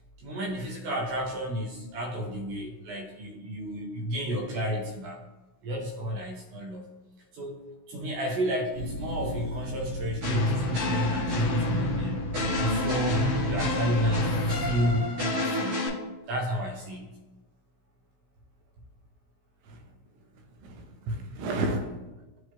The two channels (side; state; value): left; late; 16 ms